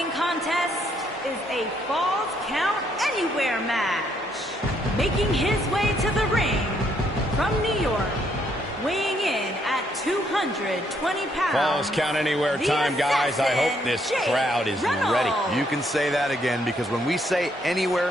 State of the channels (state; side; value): normal; both; correlation 0.72